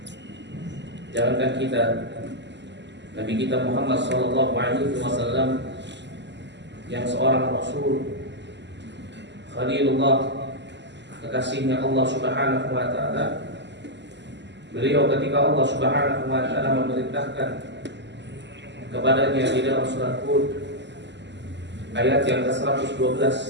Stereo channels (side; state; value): left; late; 0.51 ms